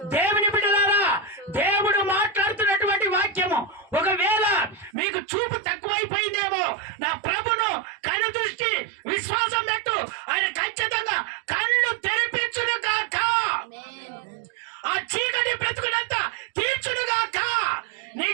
దేవుని బిడ్డలారా, దేవుడు మాట్లాడుతున్నటువంటి వాక్యము ఒకవేళ మీకు చూపు తక్కువైపోయిందేమో, నా ప్రభును కను దృష్టి విశ్వాసం పెట్టు, ఆయన ఖచ్చితంగా కళ్ళు తెరిపించును కాక, ఆ చీకటి బ్రతుకునంతా తీర్చునుగాక, నీ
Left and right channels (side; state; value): left; drops out; at 5.0 s